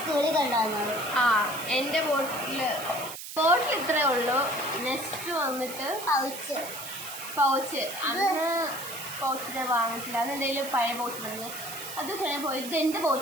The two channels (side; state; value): right; noise; hiss, 10 dB below the sound